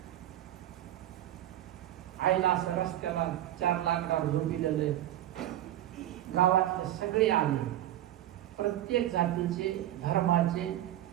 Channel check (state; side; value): quieter; left; 13.1 dB